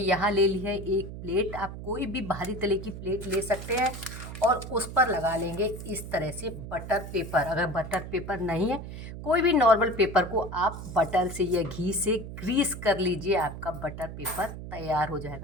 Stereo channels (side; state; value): right; noise; hum, 10 dB below the sound